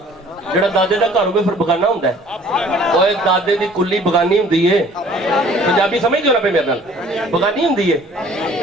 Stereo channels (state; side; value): normal; both; correlation 0.53